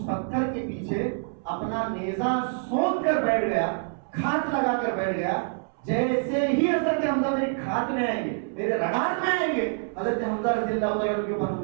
پتھر کے پیچھے اپنا نیزہ سونپ کر بیٹھ گیا, کھات لگا کر بیٹھ گیا. جیسے ہی حضرت حمزہ میری کھات میں آئیں گے, میرے رگاٹ میں آئیں گے, حضرت حمزہ رضی اللہ تعالیٰ عنہ کے اوپر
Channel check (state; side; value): silent; left; 61 dB below the other